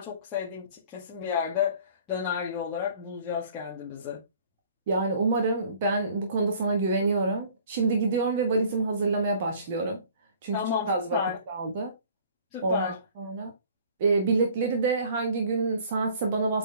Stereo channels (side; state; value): both; inverted; correlation -0.52